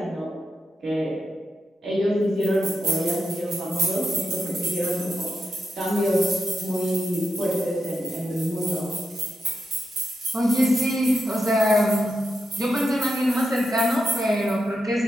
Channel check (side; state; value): both; normal; correlation 0.86